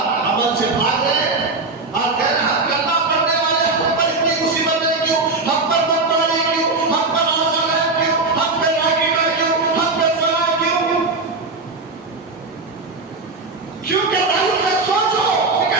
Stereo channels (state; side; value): quieter; left; 3.6 dB